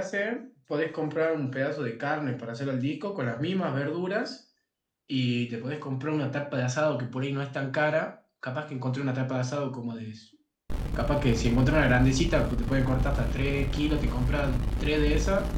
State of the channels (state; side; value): identical; both; correlation 1.00